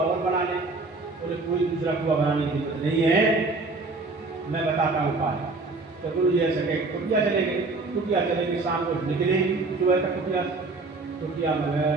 और बना ले। बोले कोई दूसरा कुआ बनाने की जरूरत नहीं है, मैं बताता हूँ उपाय। तो गुरु जी ऐसे कहे कुटिया चले गए, कुटिया चले गए, शाम को निकले सुबह तक कुटिया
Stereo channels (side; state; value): left; quieter; 3.5 dB